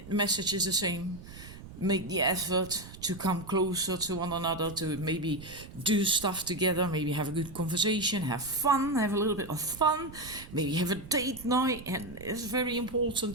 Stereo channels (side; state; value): right; noise; rumble, 16 dB below the sound